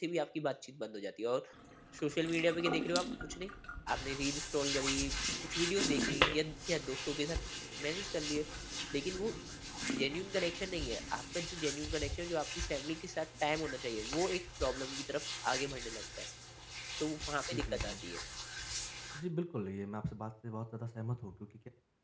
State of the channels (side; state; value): both; identical; correlation 1.00